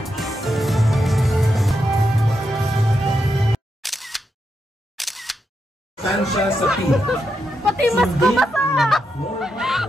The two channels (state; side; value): normal; both; correlation 0.84